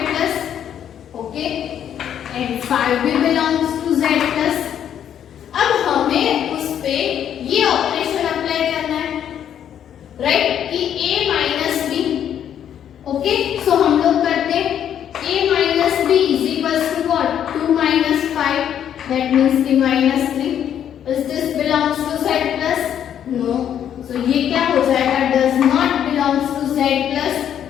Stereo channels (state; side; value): quieter; right; 9.6 dB